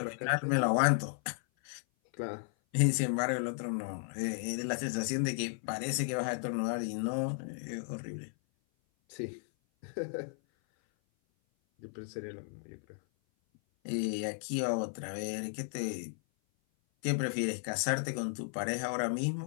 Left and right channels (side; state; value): right; silent; 55 dB below the other